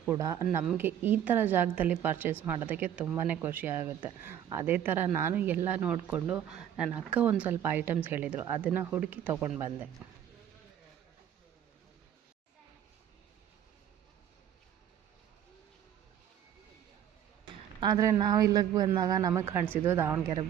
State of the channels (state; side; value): quieter; left; 10.1 dB